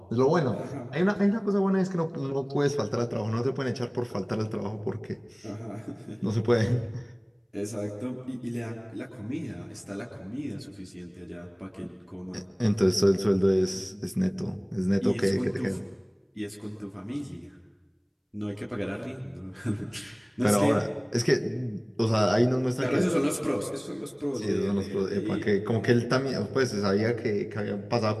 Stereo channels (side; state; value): both; identical; correlation 1.00